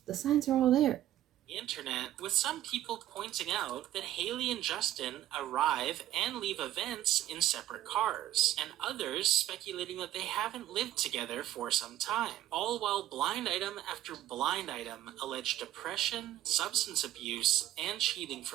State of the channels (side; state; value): left; quieter; 13.0 dB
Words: The signs are all there. The internet, with some people pointing out that Hailey and Justin arrive and leave events in separate cars, and others speculating that they haven't lived together for some time, all while blind item after blind item allege depression, substance abuse, and cheating